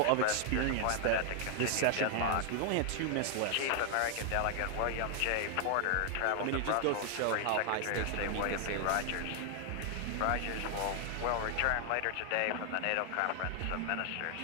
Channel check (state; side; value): different; both; correlation 0.00